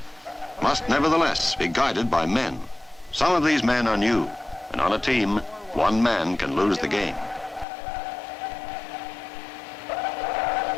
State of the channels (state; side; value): drops out; right; at 7.7 s